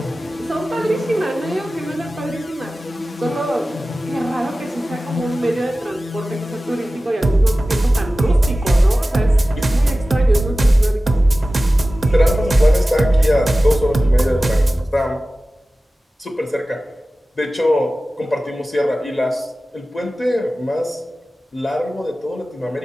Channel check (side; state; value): both; normal; correlation 0.96